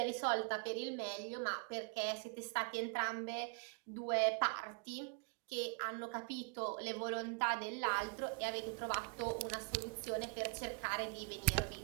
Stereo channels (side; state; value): left; quieter; 34.2 dB